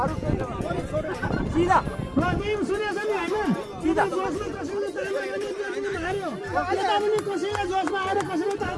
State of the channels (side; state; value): both; identical; correlation 1.00